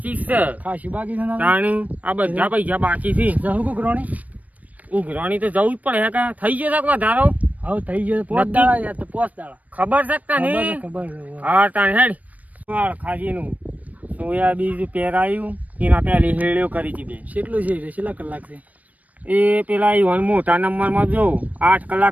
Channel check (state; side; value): late; left; 0.072 ms